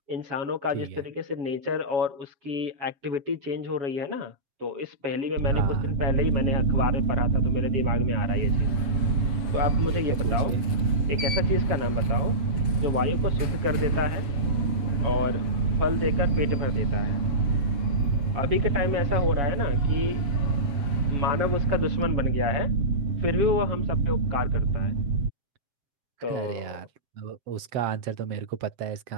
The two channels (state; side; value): late; left; 7.4 ms